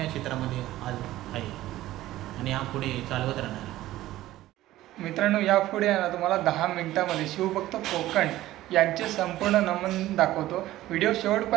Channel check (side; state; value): left; quieter; 15.3 dB